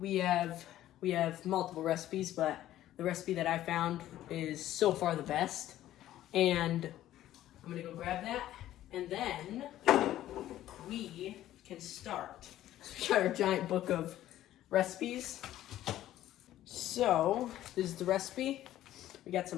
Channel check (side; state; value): right; quieter; 13.4 dB